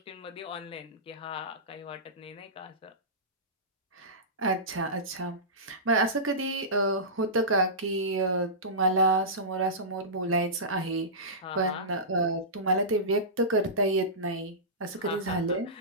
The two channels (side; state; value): both; normal; correlation -0.19